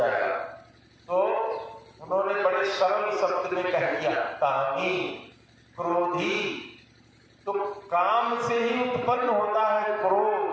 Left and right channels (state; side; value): identical; both; correlation 1.00